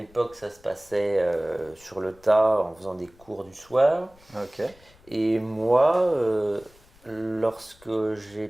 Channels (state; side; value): noise; left; rumble, 27 dB below the sound